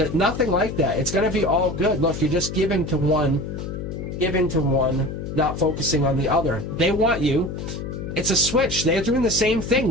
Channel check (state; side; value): noise; left; hum, 7 dB below the sound